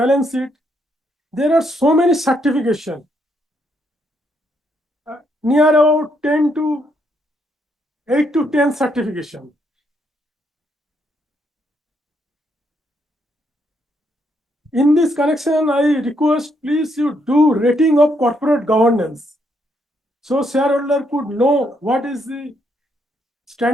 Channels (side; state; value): both; normal; correlation 0.75